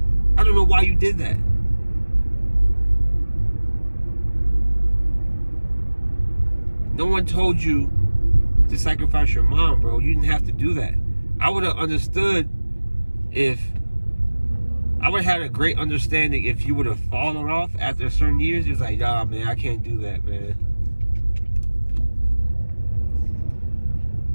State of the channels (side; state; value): both; inverted; correlation -1.00